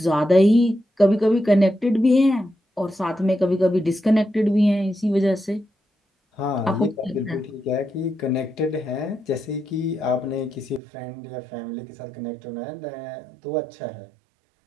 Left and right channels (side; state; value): left; drops out; at 10.8 s